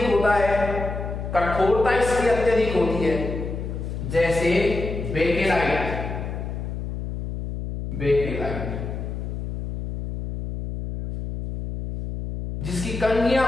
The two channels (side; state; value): left; noise; hum, 5 dB below the sound